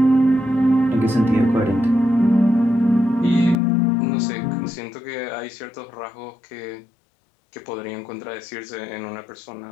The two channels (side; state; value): right; drops out; at 3.6 s